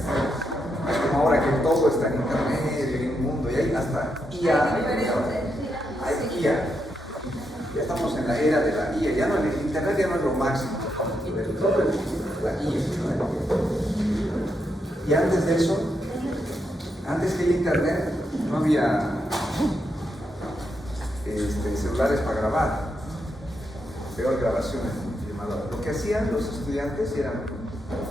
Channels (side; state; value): both; normal; correlation 0.82